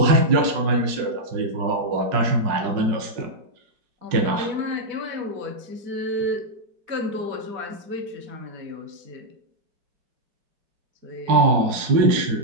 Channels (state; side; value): late; left; 5.4 ms